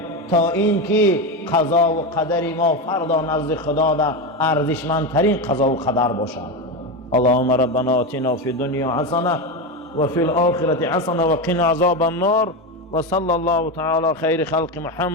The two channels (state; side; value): normal; both; correlation 0.15